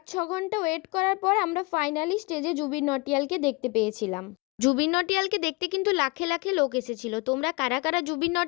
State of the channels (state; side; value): quieter; right; 26.5 dB